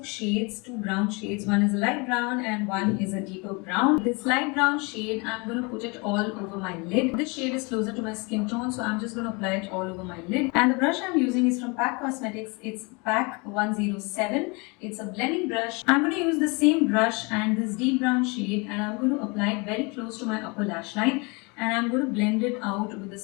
shades, two brown shades. One is a light brown and one is a deeper brown. This light brown shade, I'm going to put it all over my lid. This shade is closer to my skin tone, so I'm just going to apply it all over my lid. And the brush I'm using is from P.A.C Cosmetics. It's P.A.C 107. It's a blending brush. I'm going to use the same brush and this deep brown shade, and I'm going to apply it very close to my upper lash line. And I'm going to blend it out with the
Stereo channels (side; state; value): right; quieter; 29.3 dB